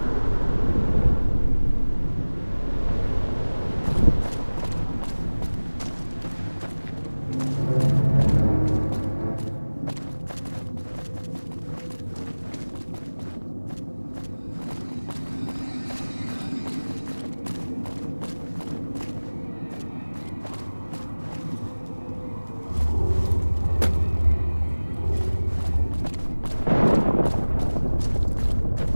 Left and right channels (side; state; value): both; inverted; correlation -1.00